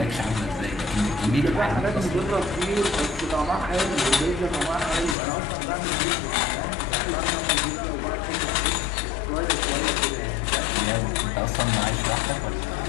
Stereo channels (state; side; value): drops out; right; at 5.2 s